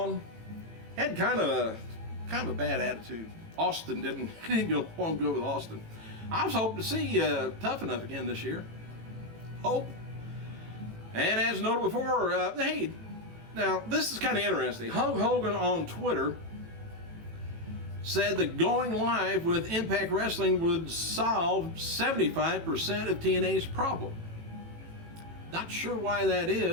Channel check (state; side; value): late; left; 18 ms